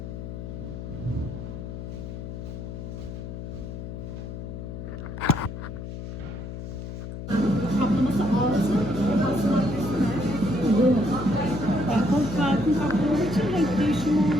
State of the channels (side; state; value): left; noise; hum, 8 dB below the sound